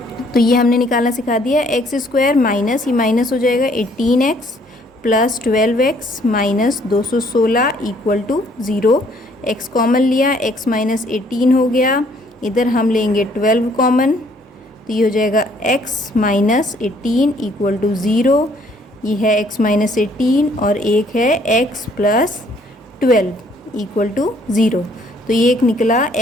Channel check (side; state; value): both; normal; correlation 0.63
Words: तो ये हमने निकालना सिखा दिया। एक्स स्क्वायर माइनस, ये माइनस हो जाएगा 18x plus 12x minus 216 equal to 0। x common लिया, x माइनस 18 हो गया, इधर हम लेंगे 12 कॉमन, तो ये हो जाएगा x माइनस 18 इक्वल टू 0। ये है x माइनस 18 और एक है x प्लस 12 इक्वल टू 0। तो ये एक निकला